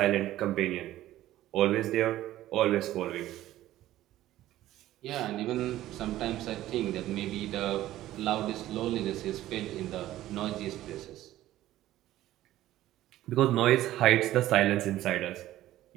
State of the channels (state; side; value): quieter; left; 14.4 dB